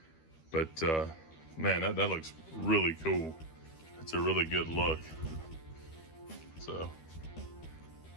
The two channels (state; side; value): late; right; 13 ms